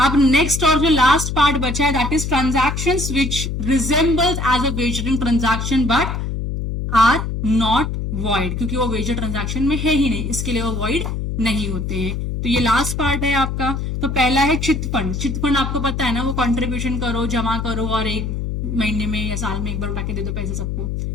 नेक्स्ट और जो लास्ट पार्ट बचा है that is transactions which resembles as a wagering transaction but are not void, क्योंकि वो वेजर ट्रांजैक्शन में है ही नहीं, इसके लिए वो वॉइड नहीं होते हैं। तो ये लास्ट पार्ट है आपका। तो पहला है चिट फंड। चिट फंड आपको पता है ना, वो कंट्रीब्यूशन करो, जमा करो और एक महीने में या साल में एक बार उठा के दे दो पैसे सबको,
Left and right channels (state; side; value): noise; left; hum, 3 dB below the sound